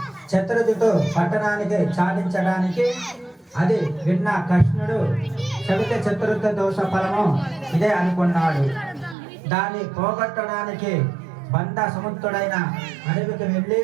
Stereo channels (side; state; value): left; drops out; at 9.2 s